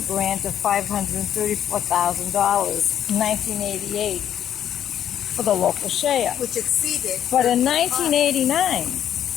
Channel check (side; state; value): right; quieter; 10.2 dB